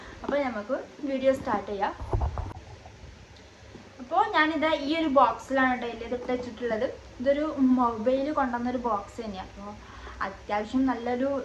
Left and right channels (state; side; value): identical; both; correlation 1.00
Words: അപ്പോൾ നമുക്ക് വീഡിയോ സ്റ്റാർട്ട് ചെയ്യാം. അപ്പോൾ ഞാനിത് ഈ ഒരു ബോക്സിലാണ് കേട്ടോ ഇതിട്ട് വെച്ചിട്ടുള്ളത്. ഇതൊരു മൊബൈൽ കൊണ്ടുവന്നൊരു ബോക്സ് തന്നെയാണ്. അപ്പോൾ അത്യാവശ്യം നല്ലൊരു